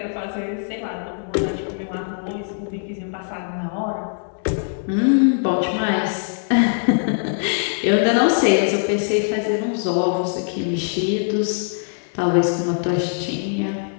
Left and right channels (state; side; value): silent; right; 64 dB below the other